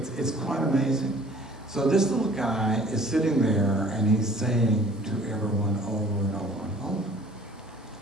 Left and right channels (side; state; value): both; normal; correlation 0.52